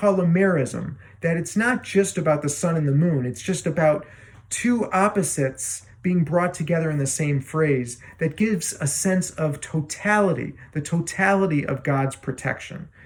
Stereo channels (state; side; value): identical; both; correlation 1.00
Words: a merism, that it's not just about the sun and the moon, it's just about two opposites being brought together in the same phrase that gives a sense of totality, the totality of God's protection,